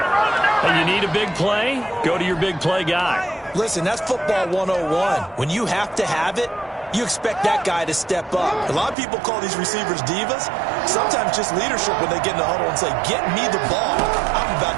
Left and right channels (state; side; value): drops out; left; at 9.0 s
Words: And you need a big play? Go to your big play guy. Listen, that's football 101. When you have to have it, you expect that guy to step up. A lot of people call these receivers divas. Sometimes just leadership when they get in the huddle and say, get me the ball. I'm about